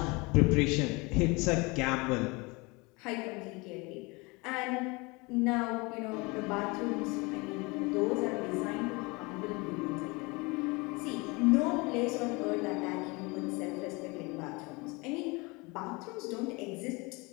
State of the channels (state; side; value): quieter; right; 26.3 dB